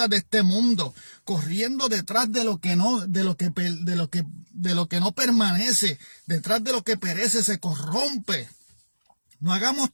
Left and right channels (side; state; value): both; inverted; correlation -1.00